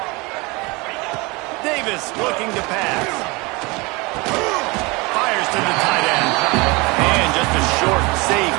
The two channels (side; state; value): left; quieter; 25.8 dB